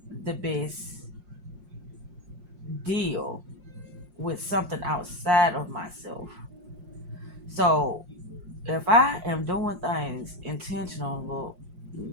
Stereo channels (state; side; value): late; left; 5.6 ms